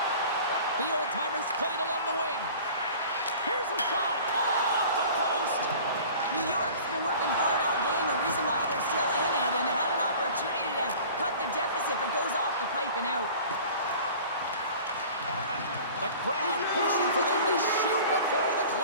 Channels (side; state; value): both; inverted; correlation -0.43